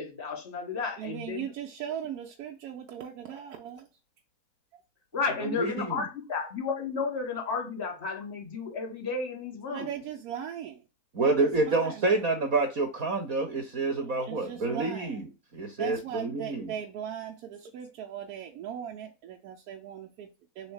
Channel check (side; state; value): left; late; 4.1 ms